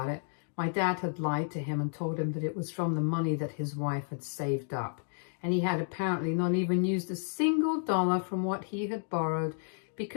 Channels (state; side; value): silent; right; digital silence